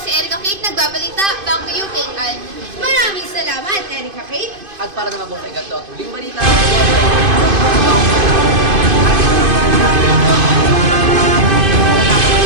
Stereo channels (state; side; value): late; left; 2.5 ms